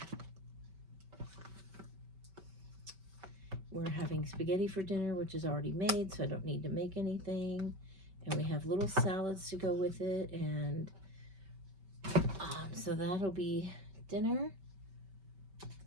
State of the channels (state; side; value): late; left; 5.2 ms